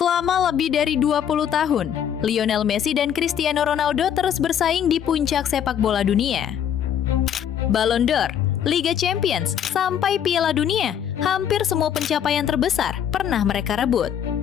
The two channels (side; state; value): right; quieter; 9.1 dB